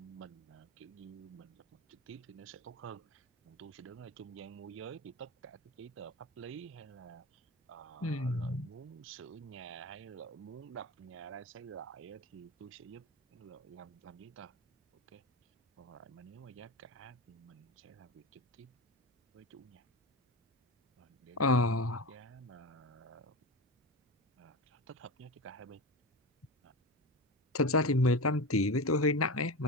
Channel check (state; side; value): normal; both; correlation 0.24